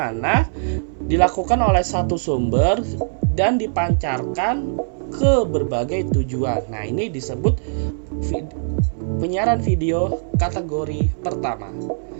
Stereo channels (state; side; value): silent; left; digital silence